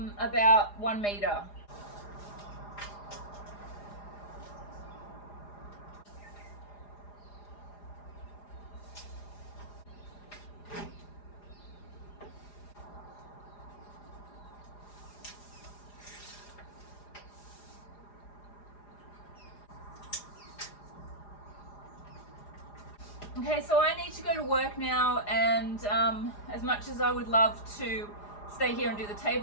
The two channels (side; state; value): right; late; 4.9 ms